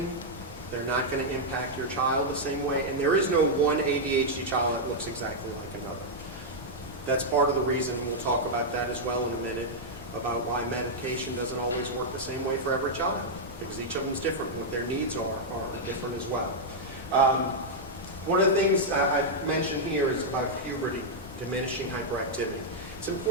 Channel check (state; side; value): normal; both; correlation -0.04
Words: They're not going to impact your child the same way. And there is no one ADHD child that looks exactly like another. That's part of the reason, we'll talk about that as well in a minute, about why medication doesn't always work the same way for every child. Because each of them is different. What their needs are different as well. One of the things I've mentioned here is about puberty, diminishing hyperactivity. It's